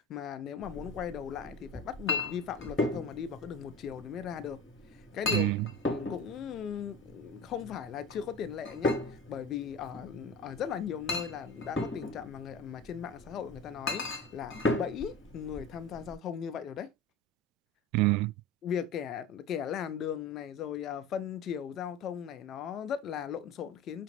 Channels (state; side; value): normal; both; correlation 0.31